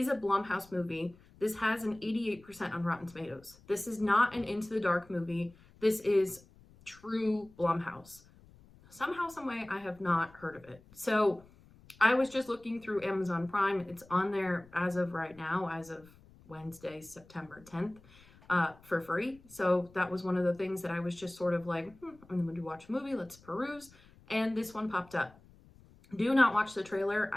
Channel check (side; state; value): left; noise; rumble, 25 dB below the sound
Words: a Blumhouse movie. This has an 88% on Rotten Tomatoes. This is not an Into the Dark movie. This is true Blumhouse. Somehow, someway, I have not heard of it. So I was just looking through Amazon Prime. It's on there as of right now, as of Wednesday, September 10th, for free. So that was one of the things that I was just sort of like, I'm going to watch a movie. Let's peruse. And this one popped up. Do not watch the trailer.